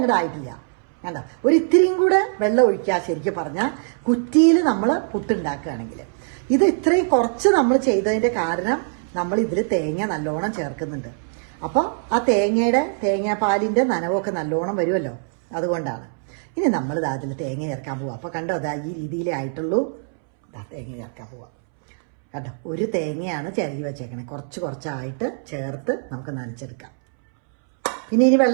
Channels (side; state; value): left; silent; 64 dB below the other